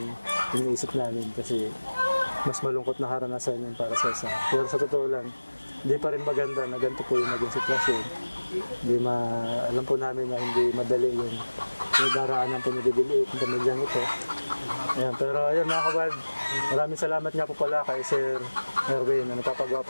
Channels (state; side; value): inverted; both; correlation -1.00